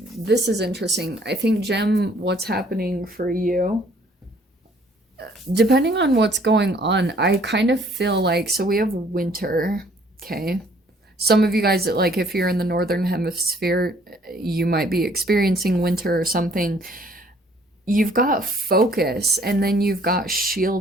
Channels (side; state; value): both; normal; correlation 0.60